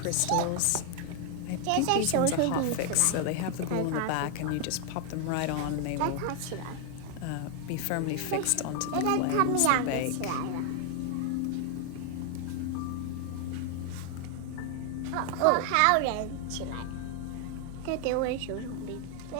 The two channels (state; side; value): different; both; correlation 0.00